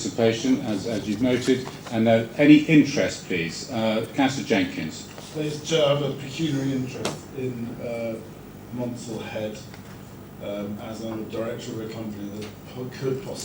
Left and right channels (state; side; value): identical; both; correlation 1.00